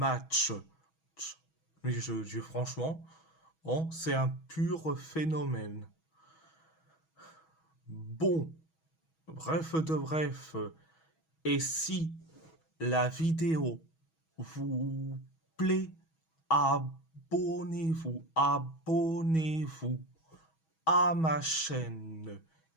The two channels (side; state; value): right; late; 6.2 ms